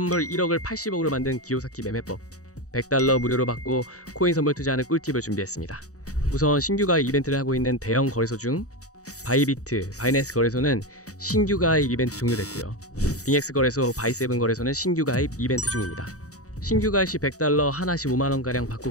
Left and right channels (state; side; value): late; right; 0.66 ms